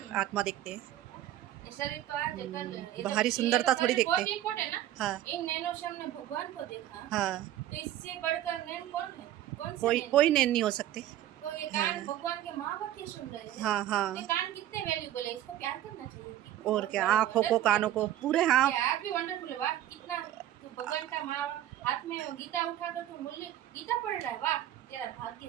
आत्मा देखते हैं। शरीर तो आज कल बाहरी सुंदरता थोड़ी देखते। बहुत इम्पोर्टेंट है ना। हाँ इन नैनो श्याम ने भगवान को देखा, हाँ, तो इससे बढ़कर नैन कौन है? कौन से कोई नैन? कोई नैन नहीं हो सकते। तो ये कान हाँ भगवान के माँ बाप ये सुन रहे हैं। हाँ ये हाँ, कान कितने वैल्यूबल है, इसको प्यार करना चाहिए। और क्या, आँखों को कानों को पूरे, हाँ यार भी वंडरफुल है। वाह कितना भगवान का माँ हाथ में गीता उठाकर तू मूल्य गीता पढ़ रहा है, वाह तेरा भाग्य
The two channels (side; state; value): left; quieter; 12.7 dB